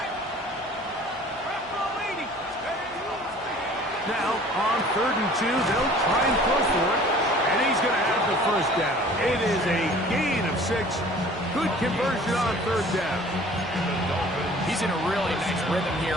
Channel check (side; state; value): left; noise; hum, 26 dB below the sound